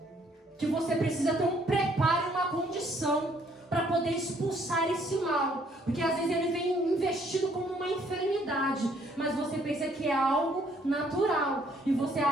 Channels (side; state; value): both; normal; correlation 0.65